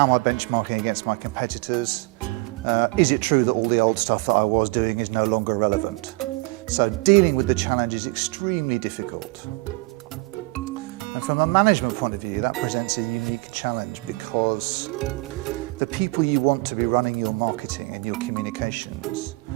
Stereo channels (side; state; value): left; quieter; 25.3 dB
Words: am I benchmarking against my competitors? Is it true that all the old stuff that I was doing is no longer relevant? So dealing with the challenge is extremely difficult. And from a management point of view, that presents a unique challenge, because the people you want to be running your marketing and your communications,